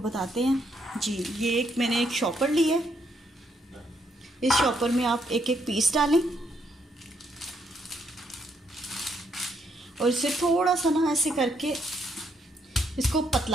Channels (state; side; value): normal; both; correlation 0.74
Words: बताते हैं जी। ये मैंने एक शॉपर ली है। इस शॉपर में आप एक एक पीस डालें और इसे थोड़ा सा ना ऐसे करके इसको